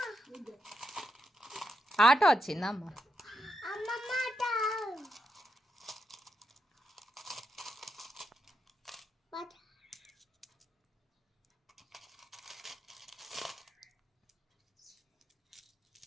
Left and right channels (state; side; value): normal; both; correlation 0.84